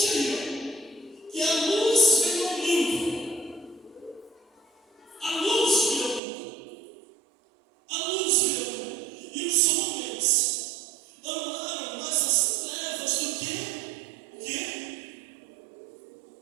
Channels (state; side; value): drops out; left; at 6.2 s